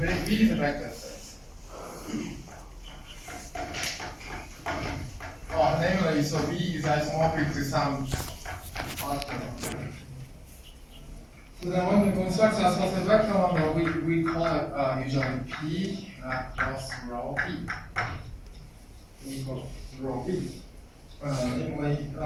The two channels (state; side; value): identical; both; correlation 1.00